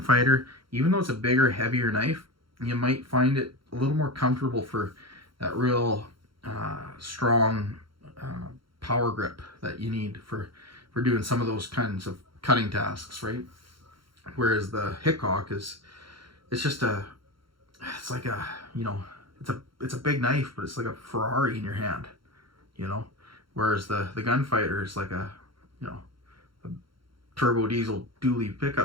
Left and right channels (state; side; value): late; left; 0.73 ms